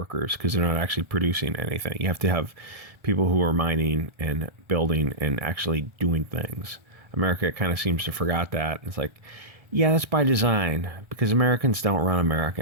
because they're not actually producing anything. You have to have people who are mining and building and actually doing things. America kind of seems to forgot that. It's like, yeah, that's by design because Americans don't run America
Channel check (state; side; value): late; left; 1.4 ms